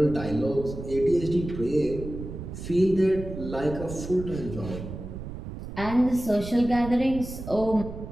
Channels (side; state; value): right; noise; rumble, 9 dB below the sound